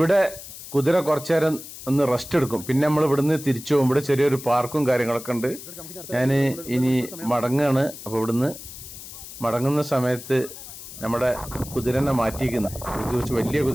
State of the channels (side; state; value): left; noise; hiss, 13 dB below the sound